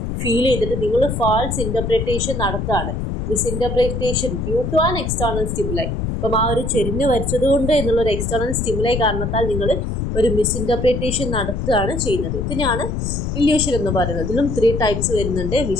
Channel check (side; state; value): left; noise; rumble, 3 dB below the sound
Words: ഫീൽ ചെയ്തിട്ട് നിങ്ങൾ ഫാൾസ് ഇൻ്റർപ്രിറ്റേഷൻ നടത്തുകയാണ്. Misinterpretation due to an external stimuli. ഇപ്പം ആ ഒരു ചെരിഞ്ഞ് വരച്ചതുകൊണ്ട് എന്നുള്ളൊരു എക്സ്റ്റേണൽ സ്റ്റിമുലൈ കാരണത്താൽ നിങ്ങൾ ഒരു മിസ്ഇൻ്റർപ്രിറ്റേഷൻ നടത്തുകയാണ് ചെയ്യുന്നത്. ഇതിനാണ് ഇല്യൂഷൻ എന്ന് പറയുന്നത്. ഇതിലും 3 ടൈപ്സ് വരുന്നുണ്ട്.